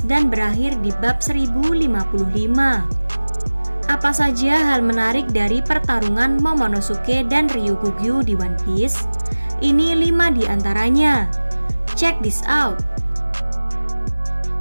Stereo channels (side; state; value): both; inverted; correlation -1.00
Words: dan berakhir di bab 1055. Apa saja hal menarik dari pertarungan Momonosuke dan Ryokugyu di One Piece? Ini 5 di antaranya. Check this out.